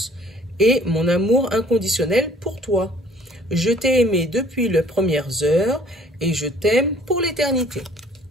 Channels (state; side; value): normal; both; correlation 0.56